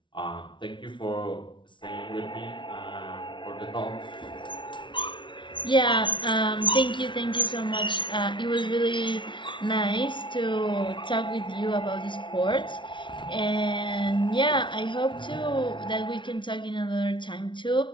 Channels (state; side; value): late; right; 0.24 ms